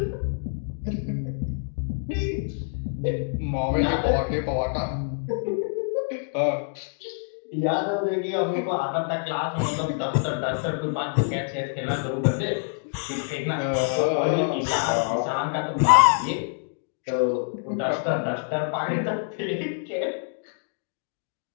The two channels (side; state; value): right; silent; digital silence